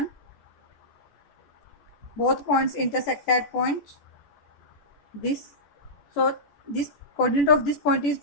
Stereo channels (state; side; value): late; right; 14 ms